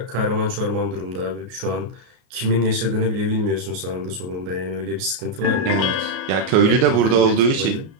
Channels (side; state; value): left; late; 33 ms